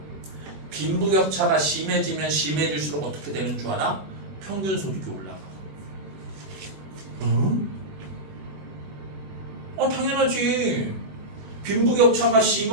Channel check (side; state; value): left; late; 21 ms